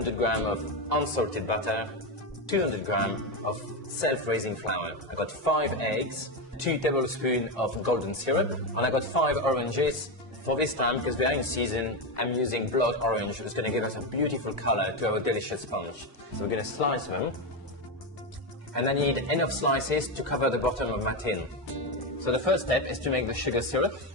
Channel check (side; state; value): both; normal; correlation 0.11